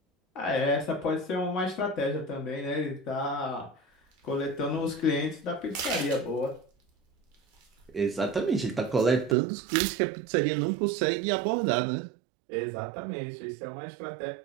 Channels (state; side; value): drops out; left; at 9.3 s